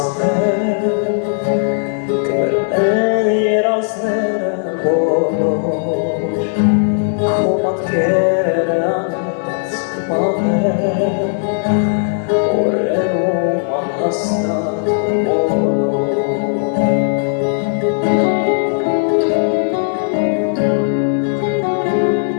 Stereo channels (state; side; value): silent; right; digital silence